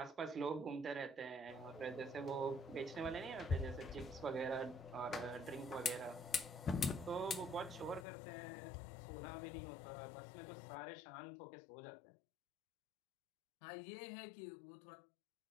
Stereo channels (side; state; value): right; drops out; at 8.1 s